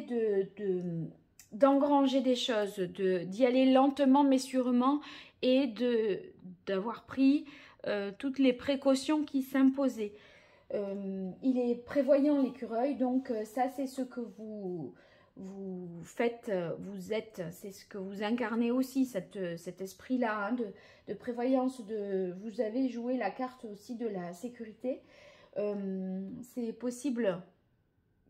d'engranger des choses, d'y aller lentement mais sûrement et d'avoir pris toutes les précautions qui s'imposaient. Il est prévoyant l'écureuil, donc ça c'est ce que vous faites, vous êtes, c'est ce que vous incarnez aussi, cet esprit-là hein, de prévoyance, vous avez joué la carte aussi de la sécurité. C'est possible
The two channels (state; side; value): identical; both; correlation 1.00